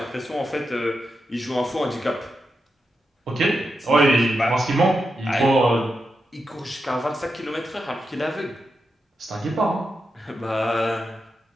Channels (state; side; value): normal; both; correlation 0.87